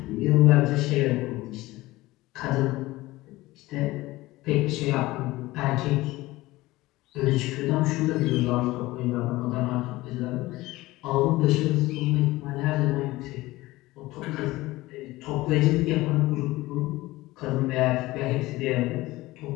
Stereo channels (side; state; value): right; quieter; 18.9 dB